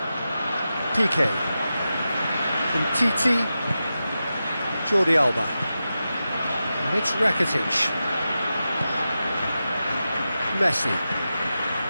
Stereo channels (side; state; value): both; inverted; correlation -0.92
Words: PK. From Titi. Jordi Alba. And it's Rakitic. Messi.